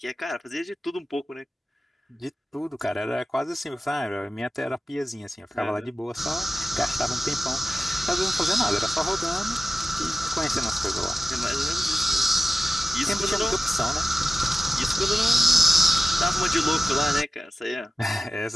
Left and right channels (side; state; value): both; normal; correlation 0.96